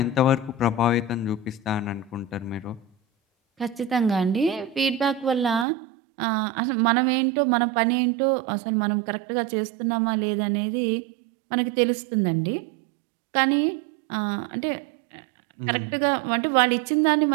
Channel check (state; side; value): drops out; left; at 5.7 s